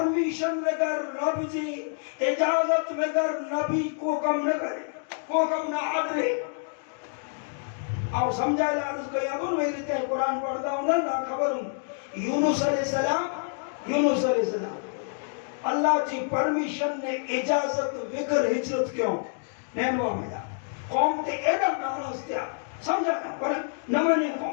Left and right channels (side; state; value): right; silent; 60 dB below the other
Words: بگر رب جی اجازت بگر نبی کو کم نہ کرے, کو کم نہ آدرے. آپ سمجھائے لارس کو یادون میری تے قرآن پڑھتا ہوں نہ خبر ہوں. یونس علیہ السلام اللہ جی پرمیشن نے اجازت بگر ہجرت کیوں نینوا میں جا قوم تے ایڈا ناراض تھیا. سمجھا پر نہ مانے